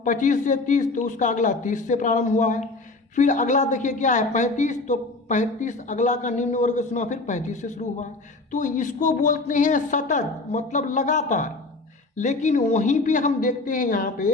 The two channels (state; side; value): quieter; right; 3.3 dB